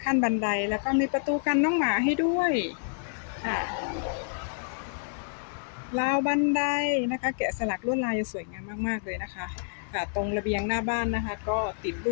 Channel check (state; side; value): silent; right; digital silence